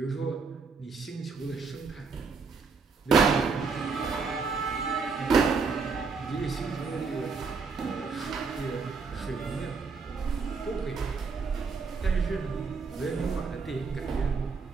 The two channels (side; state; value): left; quieter; 4.9 dB